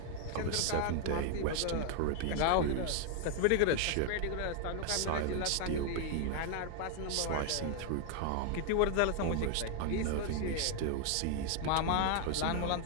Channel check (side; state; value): both; different; correlation 0.00